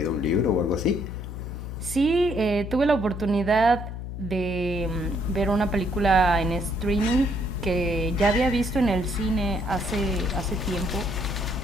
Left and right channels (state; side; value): noise; left; hum, 7 dB below the sound